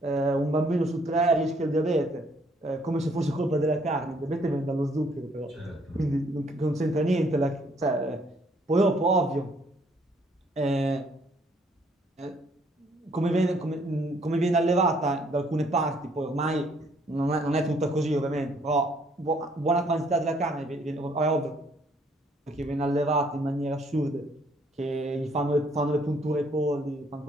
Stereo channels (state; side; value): normal; both; correlation 0.65